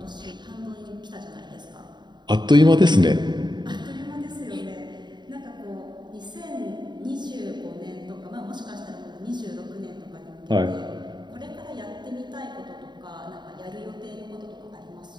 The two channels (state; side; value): late; left; 0.21 ms